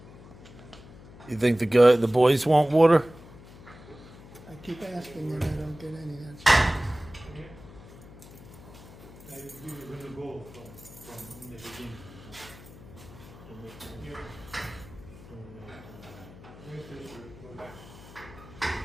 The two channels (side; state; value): left; noise; hum, 19 dB below the sound